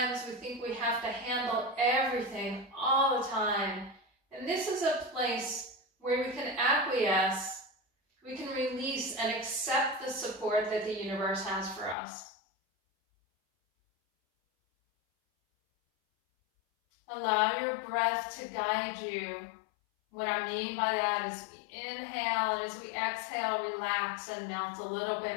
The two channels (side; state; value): right; drops out; at 12.0 s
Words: we think we have to handle everything all the time. And this is a place where we can acquiesce, we can release and accept the support that the universe has for us. Allow your breath to guide you. What I mean by that is we inhale, and as we exhale, relax and melt a little